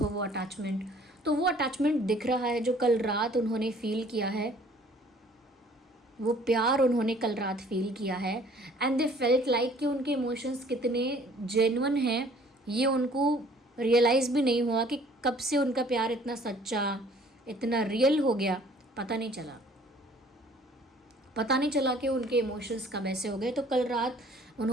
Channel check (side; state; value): both; normal; correlation 0.55